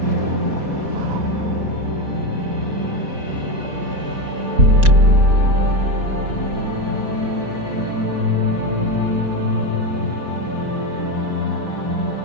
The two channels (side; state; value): left; late; 4.2 ms